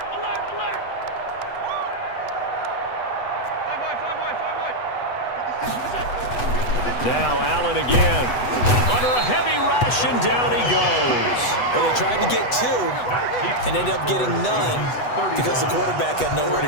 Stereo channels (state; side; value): late; right; 8.1 ms